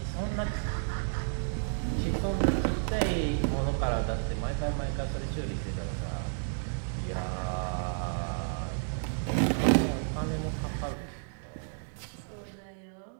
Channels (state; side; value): silent; left; digital silence